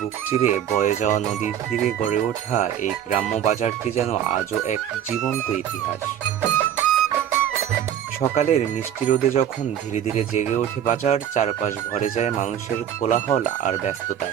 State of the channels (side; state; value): left; quieter; 9.9 dB